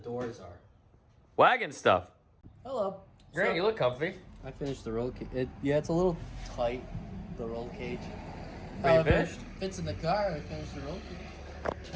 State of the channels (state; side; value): identical; both; correlation 1.00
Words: are. Wagon stuff. Hello. Grant, you look comfy. I finished the roll cage. Yeah, it's a little tight, the roll cage. But you finished? If it fits in the car, I finished the roll cage.